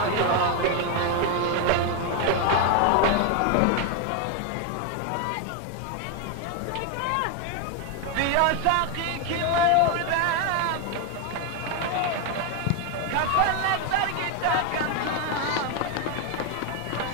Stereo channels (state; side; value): different; both; correlation 0.01